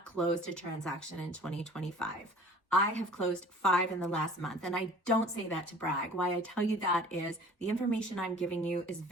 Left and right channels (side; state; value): both; normal; correlation 0.47